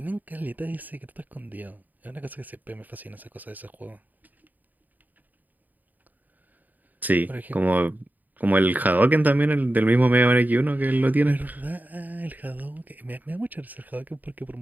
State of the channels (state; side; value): late; left; 0.084 ms